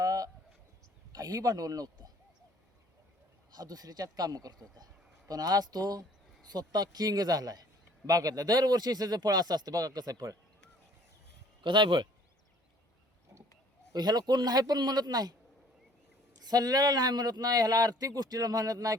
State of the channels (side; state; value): both; normal; correlation 0.56